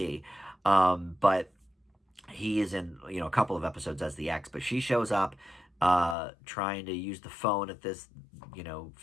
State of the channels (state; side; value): drops out; right; at 6.2 s